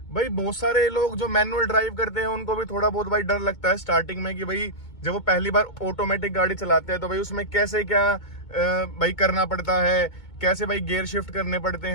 भाई बहुत सारे लोग जो मैनुअल ड्राइव करते हैं उनको भी थोड़ा बहुत भाई डर लगता है स्टार्टिंग में कि भाई जब वो पहली बार ऑटोमेटिक गाड़ी चलाते हैं तो भाई उसमें कैसे क्या भाई करना पड़ता है, कैसे भाई गियर शिफ्ट करने पड़ते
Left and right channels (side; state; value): right; late; 2.2 ms